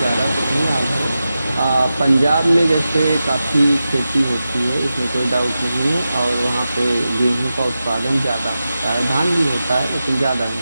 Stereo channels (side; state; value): both; inverted; correlation -0.92